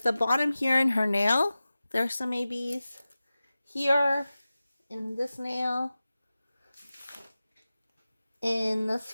the bottom here in her nail, there's some ABs. Here, in this nail. In this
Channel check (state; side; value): inverted; both; correlation -0.95